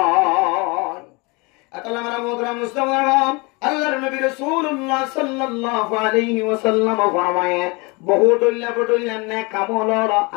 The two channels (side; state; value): right; quieter; 27.7 dB